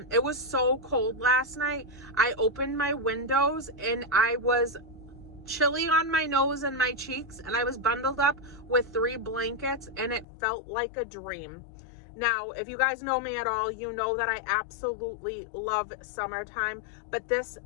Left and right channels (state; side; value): drops out; right; at 10.2 s